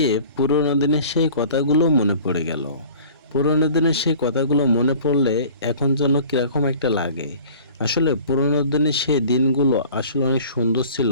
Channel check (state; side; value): inverted; both; correlation -0.47